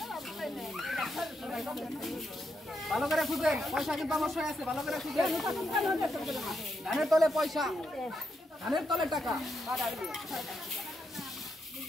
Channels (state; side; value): normal; both; correlation 0.81